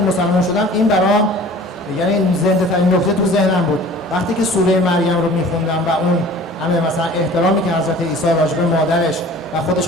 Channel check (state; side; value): normal; both; correlation 0.45